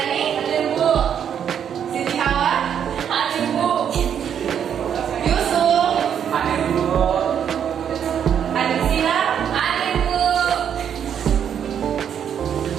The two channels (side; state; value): left; quieter; 8.6 dB